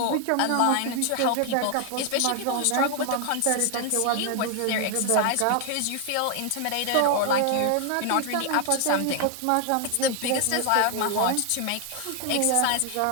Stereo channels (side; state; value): both; different; correlation 0.00